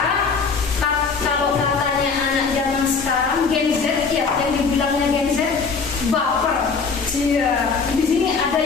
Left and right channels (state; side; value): quieter; right; 5.0 dB